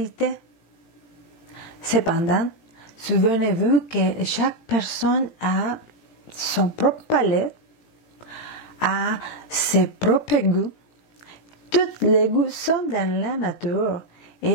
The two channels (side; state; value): right; late; 18 ms